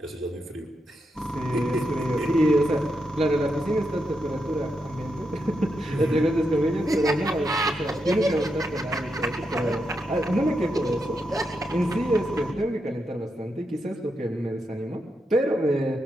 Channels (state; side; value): normal; both; correlation 0.84